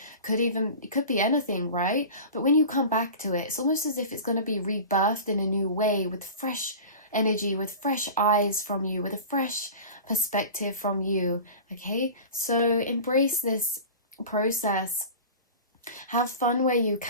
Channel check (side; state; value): both; inverted; correlation -0.35